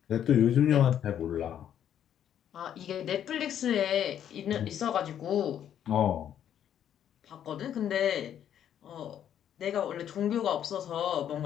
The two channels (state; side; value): quieter; right; 9.9 dB